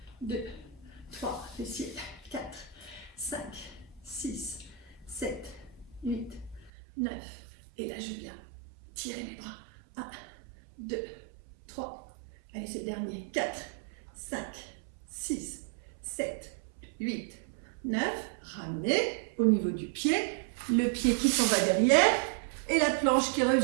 2, 3, fessiers. 4, 5, 6, 7, 8, 9. Et là, je viens tirer mes bras. 1, 2, 3. Allez, c'est le dernier. 4, 5, 6, 7, 8, 9. Ramenez au niveau du pied. Le pied qui s'en va derrière. Et la planche qui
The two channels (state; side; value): drops out; left; at 6.7 s